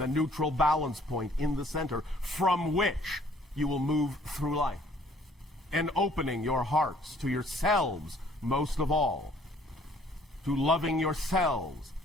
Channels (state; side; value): normal; both; correlation 0.59